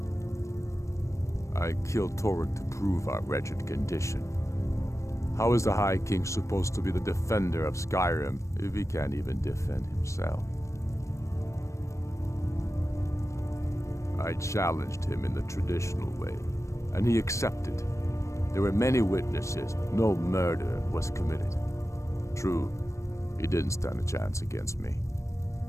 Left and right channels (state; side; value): late; right; 0.15 ms